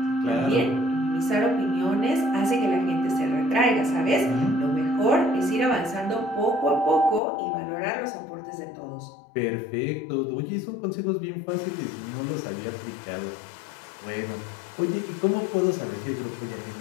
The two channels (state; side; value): drops out; right; at 7.2 s